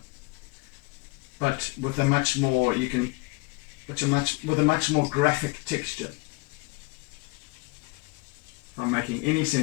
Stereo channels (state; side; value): quieter; right; 27.5 dB